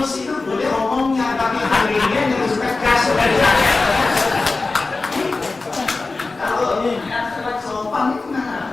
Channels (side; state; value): right; quieter; 3.6 dB